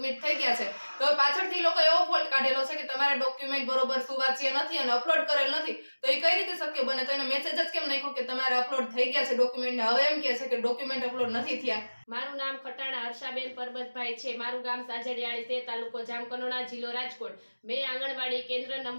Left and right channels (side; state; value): both; inverted; correlation -1.00